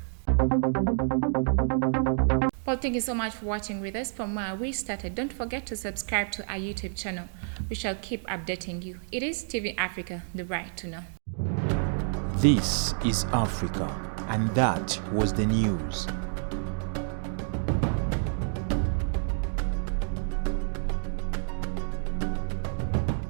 Well, thank you so much for watching with us from where we started. Don't forget to subscribe to our YouTube channel. We shall keep updating you. It is TV Africa, the right to know. This is Africa, and that was the news.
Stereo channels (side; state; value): left; silent; digital silence